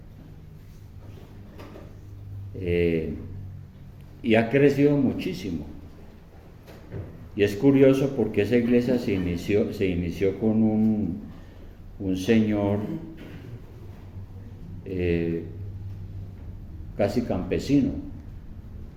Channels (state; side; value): identical; both; correlation 1.00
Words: Y ha crecido muchísimo. Y es curioso porque esa iglesia se inició con un señor casi campesino,